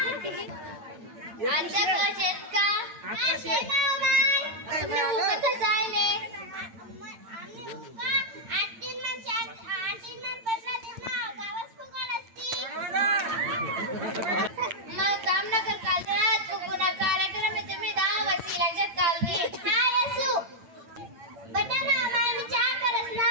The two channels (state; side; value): late; left; 8.9 ms